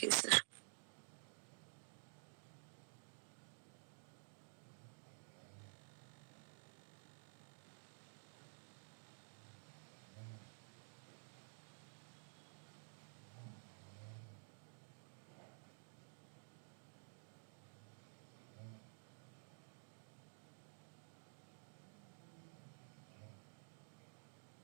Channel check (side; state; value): left; silent; digital silence